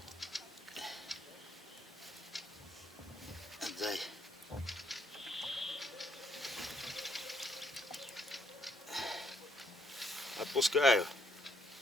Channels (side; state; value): both; normal; correlation 0.72